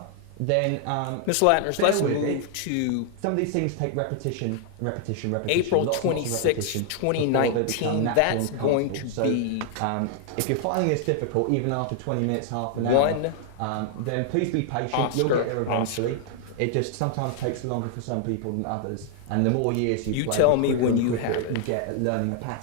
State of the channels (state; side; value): different; both; correlation 0.00